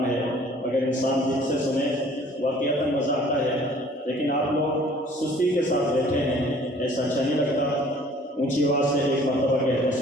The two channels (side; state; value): both; normal; correlation 0.54